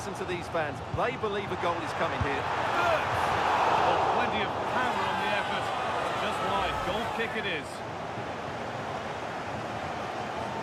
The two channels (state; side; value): identical; both; correlation 1.00